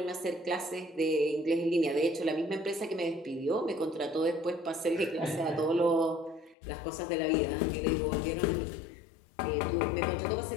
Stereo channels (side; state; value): right; drops out; at 6.6 s